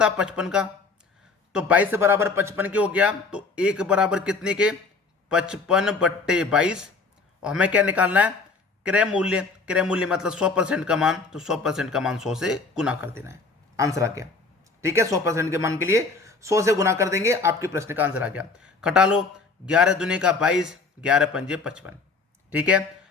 55 का। तो 22 बराबर 55 के हो गया, तो 1 बराबर कितने के, 55 बट्टे 22। और हमें क्या निकालना है, क्रय मूल्य। क्रय मूल्य मतलब 100% का मान, तो 100% का मान 100 से गुना कर देना है। आंसर आ गया। ठीक है, 100% के मान के लिए 100 से गुना कर देंगे, आपके प्रश्न का आंसर आ गया। घटा लो, 11 दूने का 22, 11 पंजे 55। ठीक है,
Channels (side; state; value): right; quieter; 4.2 dB